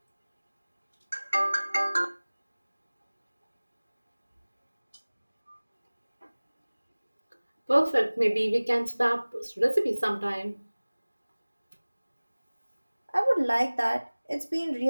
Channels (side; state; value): both; inverted; correlation -1.00